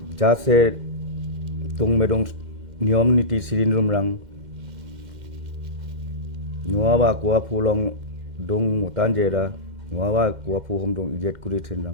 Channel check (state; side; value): late; left; 2.1 ms